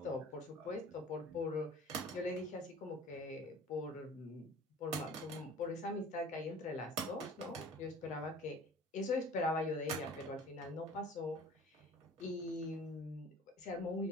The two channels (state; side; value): normal; both; correlation 0.45